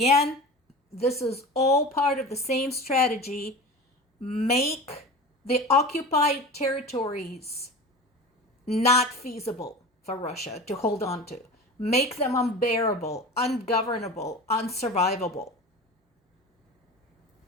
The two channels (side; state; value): both; normal; correlation 0.33